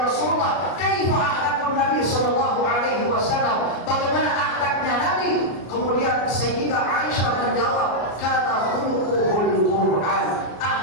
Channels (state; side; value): late; right; 33 ms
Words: Rasulullah, "Kaifa akhlaqun Nabi sallallahu alaihi wasallam?" Bagaimana akhlaknya Nabi? Kemudian Sayyidah Aisyah menjawab, "Kana khuluquhul Qur'an."